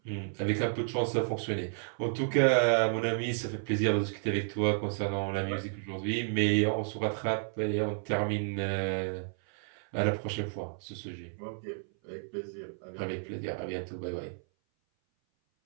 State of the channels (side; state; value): left; silent; 57 dB below the other